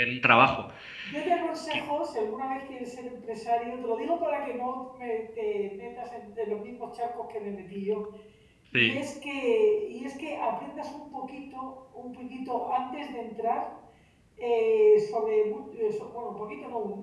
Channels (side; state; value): both; identical; correlation 1.00